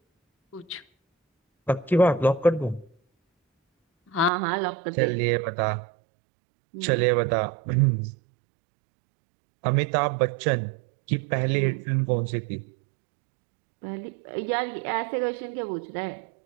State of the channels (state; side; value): drops out; left; at 4.3 s